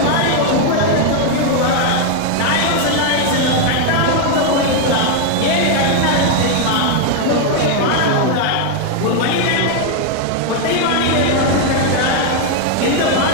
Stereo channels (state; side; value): different; both; correlation 0.01